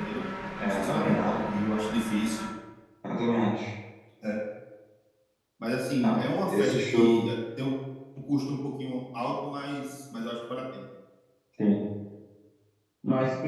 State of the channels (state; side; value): identical; both; correlation 1.00